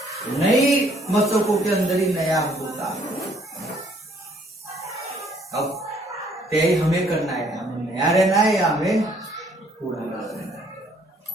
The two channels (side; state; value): both; normal; correlation 0.63